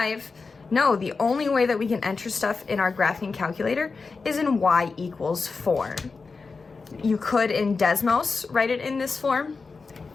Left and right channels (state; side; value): quieter; right; 4.4 dB